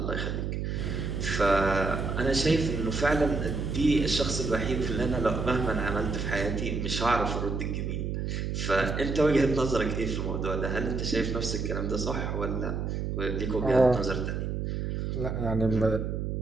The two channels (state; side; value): noise; right; hum, 2 dB below the sound